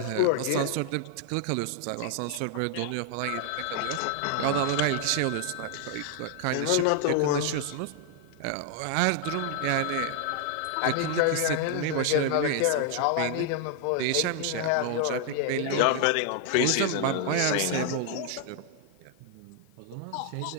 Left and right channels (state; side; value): different; both; correlation 0.00